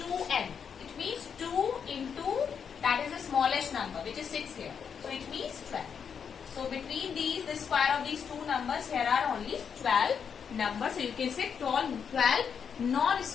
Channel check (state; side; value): quieter; right; 7.0 dB